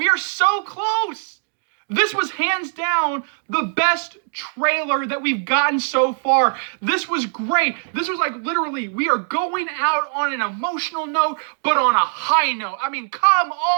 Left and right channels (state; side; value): silent; left; digital silence